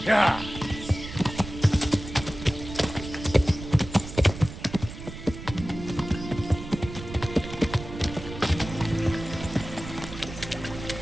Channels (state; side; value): noise; right; rumble, 11 dB below the sound